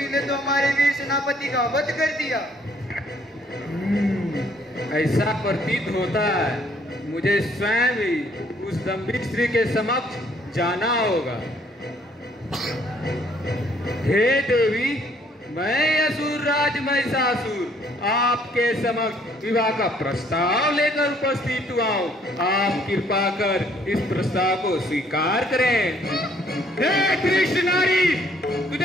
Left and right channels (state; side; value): normal; both; correlation 0.64